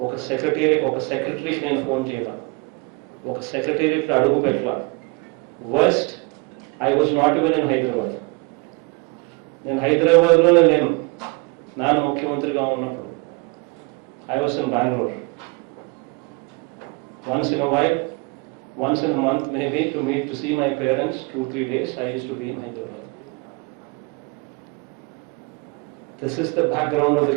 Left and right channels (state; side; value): quieter; left; 28.6 dB